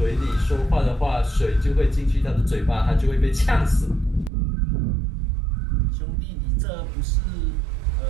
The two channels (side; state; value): left; drops out; at 4.3 s